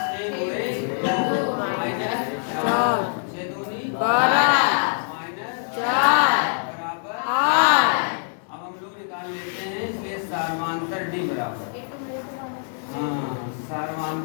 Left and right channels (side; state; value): right; silent; digital silence